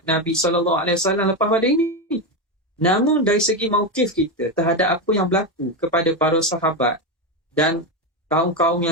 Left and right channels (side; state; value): both; normal; correlation 0.12